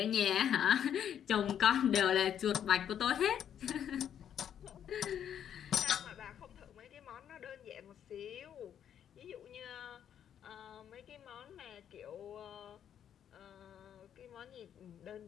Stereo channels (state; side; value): quieter; right; 9.3 dB